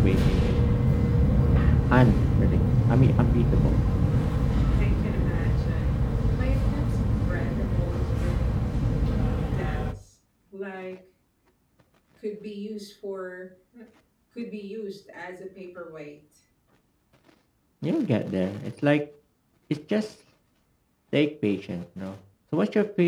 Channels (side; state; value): both; identical; correlation 1.00